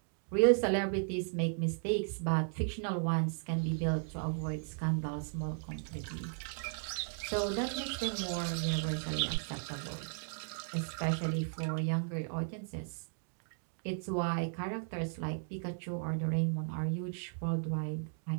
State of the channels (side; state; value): left; silent; digital silence